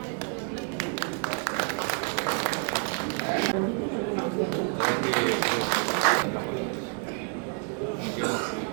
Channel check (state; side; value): quieter; left; 39.8 dB